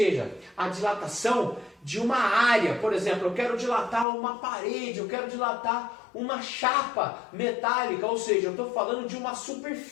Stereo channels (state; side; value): drops out; right; at 4.0 s